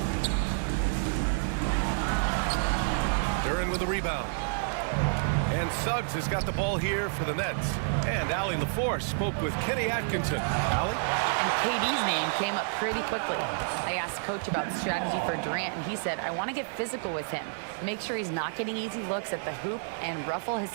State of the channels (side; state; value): left; silent; digital silence